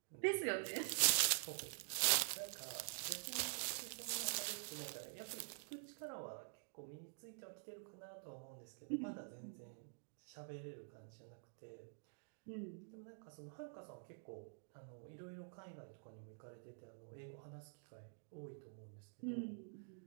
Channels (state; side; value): silent; left; digital silence